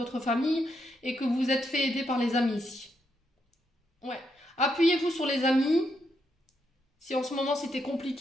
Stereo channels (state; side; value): normal; both; correlation 0.79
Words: famille et que vous vous êtes fait aider par les amis ici? Ouais. Appuyez-vous sur les amis. Si en ce moment c'était